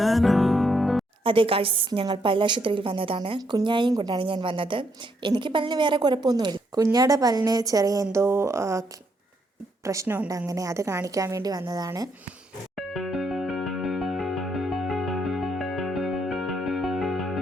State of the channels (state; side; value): normal; both; correlation 0.75